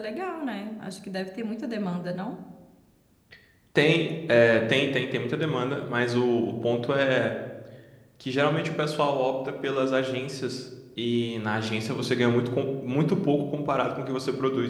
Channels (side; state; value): both; identical; correlation 1.00